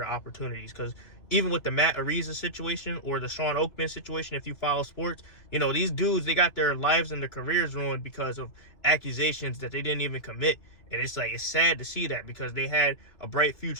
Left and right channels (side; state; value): right; late; 2.7 ms